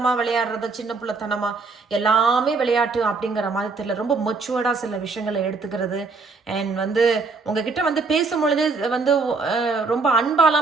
விளையாடுறது, சின்ன பிள்ளைத்தனமாக எல்லாமே விளையாட்டு அப்படிங்கிற மாதிரி தெரியல, ரொம்ப மெச்சூர்டாக சில விஷயங்களை எடுத்துக்கிறது. அண்ட் வந்து உங்ககிட்ட வந்து பேசும்பொழுது வந்து ரொம்ப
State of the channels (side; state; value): left; quieter; 4.2 dB